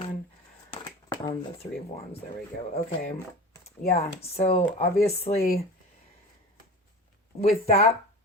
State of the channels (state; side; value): normal; both; correlation 0.33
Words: on the Three of Wands. There we go. Okay. Yeah, so obviously with